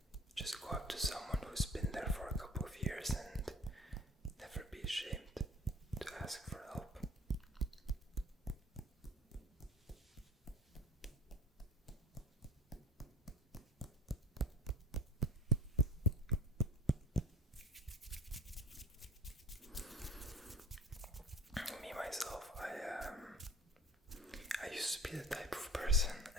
go up to someone who's been there for a couple of years, and never be ashamed to ask for help. Me myself, I used to be the type of person,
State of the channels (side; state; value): both; normal; correlation 0.41